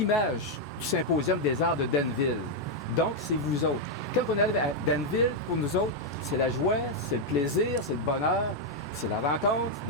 du Symposium des arts de Danville. Donc, c'est vous autres. Quand on arrive à Danville, pour nous autres, c'est la joie, c'est le plaisir, c'est le bonheur, c'est la rencontre,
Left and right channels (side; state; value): both; normal; correlation 0.00